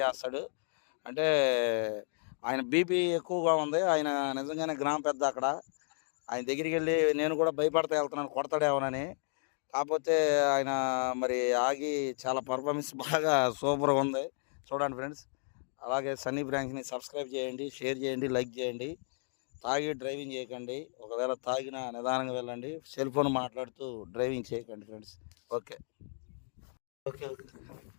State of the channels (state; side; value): silent; right; 56 dB below the other